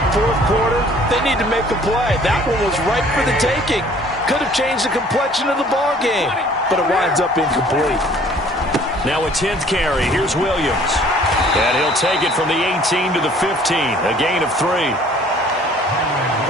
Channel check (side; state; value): both; normal; correlation 0.55